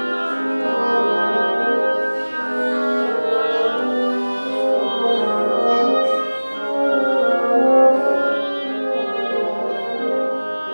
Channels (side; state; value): both; inverted; correlation -1.00